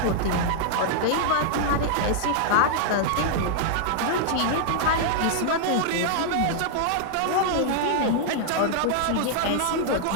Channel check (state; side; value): different; both; correlation -0.01